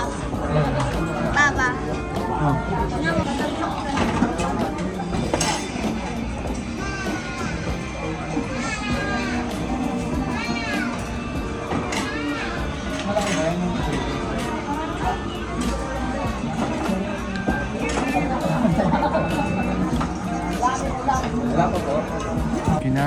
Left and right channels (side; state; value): both; identical; correlation 1.00